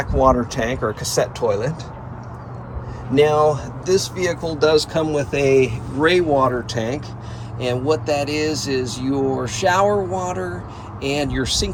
water tank or a cassette toilet. Now, this vehicle does come with a gray water tank, and what that is your shower water and your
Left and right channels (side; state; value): both; identical; correlation 1.00